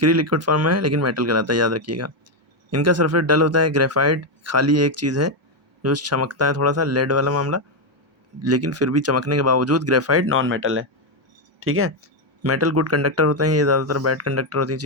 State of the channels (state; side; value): normal; both; correlation 0.05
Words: लिक्विड फॉर्म में है लेकिन मेटल कहलाता है, याद रखिएगा। इनका सरफेस डल होता है। ग्रेफाइट खाली एक चीज़ है जो चमकता है, थोड़ा सा लेड वाला मामला, लेकिन फिर भी चमकने के बावजूद ग्रेफाइट नॉन मेटल है, ठीक है। मेटल गुड कंडक्टर होते हैं, ये ज़्यादातर बैड कंडक्टर होती हैं